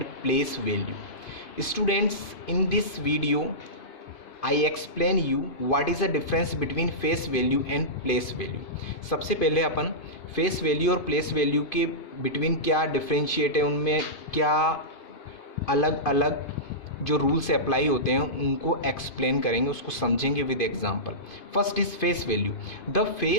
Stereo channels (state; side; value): late; right; 2.5 ms